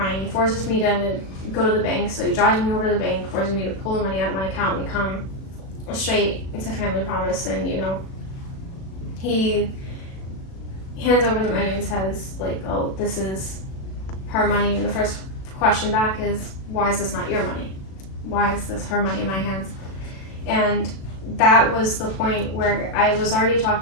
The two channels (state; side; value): late; right; 37 ms